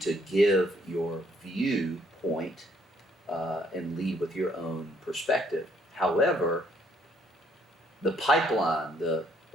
give your viewpoint and lead with your own perspective. However, the pipeline, the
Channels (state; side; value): normal; both; correlation 0.68